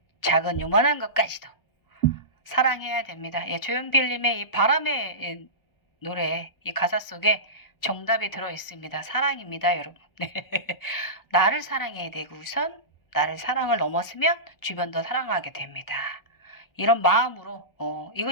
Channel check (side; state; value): right; late; 1.0 ms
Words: 작은 요만한 것까지도 사랑해야 됩니다. 예. 조용필님의 이 바람의 노래 이 가사 속에 정답이 들어 있습니다. 사랑입니다, 여러분. 나를 사랑해야 되고 우선 나를 사랑을 넘었으면 주변도 사랑하게 됩니다. 이런 마음으로